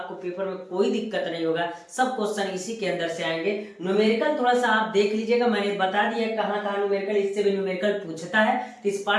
पेपर में कोई दिक्कत नहीं होगा, सब क्वेश्चन इसी के अंदर से आएंगे। न्यूमेरिकल थोड़ा सा आप देख लीजिएगा, मैंने बता दिया कहाँ कहाँ न्यूमेरिकल, इससे भी न्यूमेरिकल पूछता है, तो इस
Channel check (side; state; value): both; identical; correlation 1.00